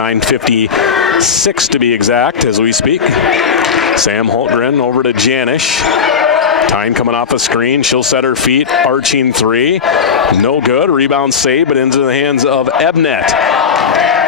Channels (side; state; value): right; quieter; 6.4 dB